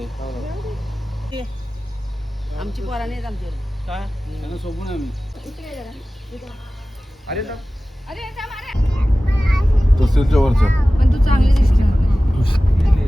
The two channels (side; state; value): both; normal; correlation 0.97